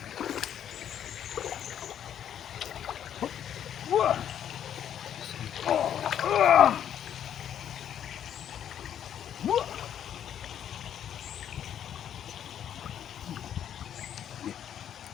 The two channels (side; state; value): right; quieter; 9.7 dB